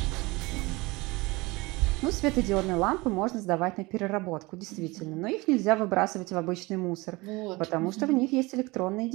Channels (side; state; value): left; quieter; 23.1 dB